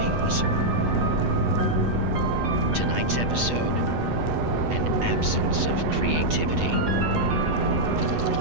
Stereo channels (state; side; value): late; left; 8.2 ms